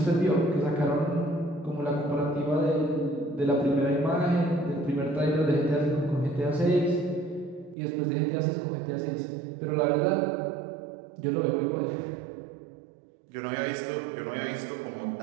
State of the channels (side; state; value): left; drops out; at 7.8 s